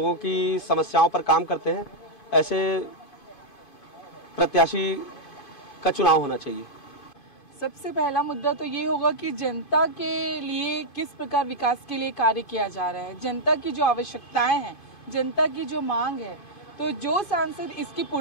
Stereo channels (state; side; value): late; right; 2.5 ms